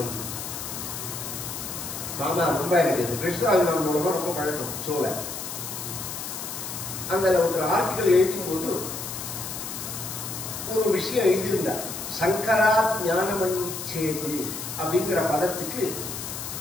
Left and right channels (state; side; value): noise; left; hiss, 7 dB below the sound